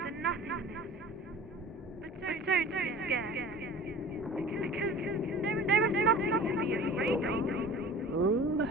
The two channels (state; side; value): normal; both; correlation 0.40